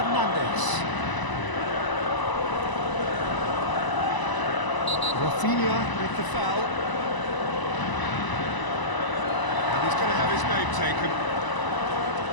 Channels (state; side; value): late; right; 1.0 ms